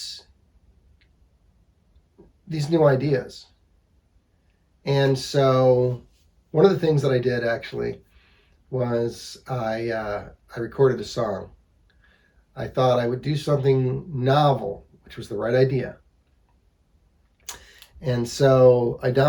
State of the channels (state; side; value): identical; both; correlation 1.00